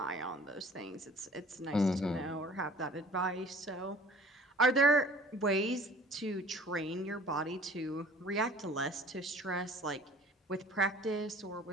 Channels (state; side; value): normal; both; correlation 0.49